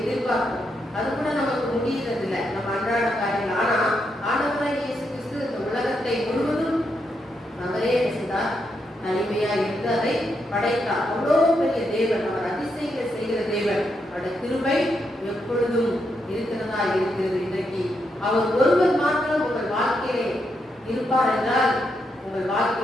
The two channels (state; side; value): normal; both; correlation 0.81